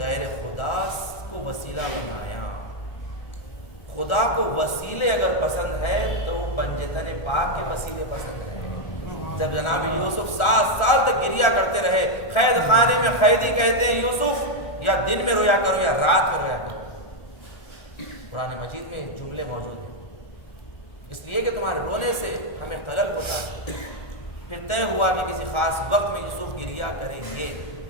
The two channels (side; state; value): right; late; 1.4 ms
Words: خدا کو وسیلہ بنایا۔ خدا کو وسیلے اگر پسند ہے تو پنجتن پاک کے وسیلے پسند ہے۔ جب جناب یوسف 7 سال تک گریا کرتے رہے، قید خانے میں قیدی کہتے ہیں یوسف یا دن میں رویا کرو یا رات میں رویا کرو۔ قرآن مجید میں جملے موجود ہیں، اس لیے کہ تمہارے رونے سے ہمیں خلل ہوتا ہے۔ پھر طے ہوا کہ کسی خاص وقت میں یوسف گریا کریں گے۔